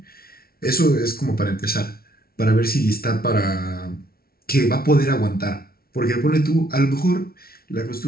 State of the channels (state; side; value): late; right; 0.44 ms